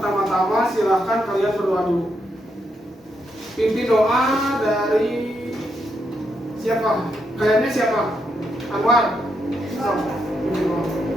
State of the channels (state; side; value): normal; both; correlation 0.80